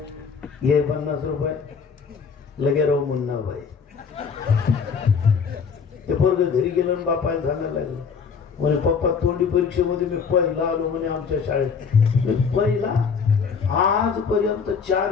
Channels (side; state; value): right; quieter; 5.9 dB